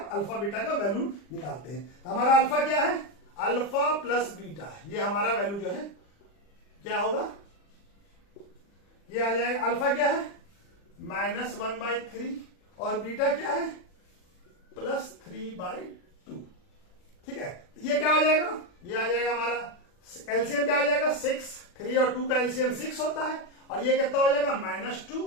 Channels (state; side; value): late; right; 40 ms